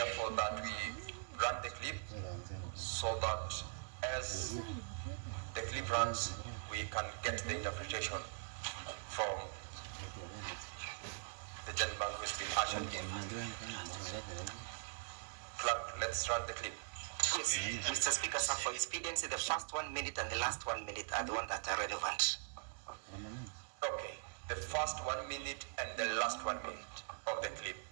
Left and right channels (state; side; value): silent; left; digital silence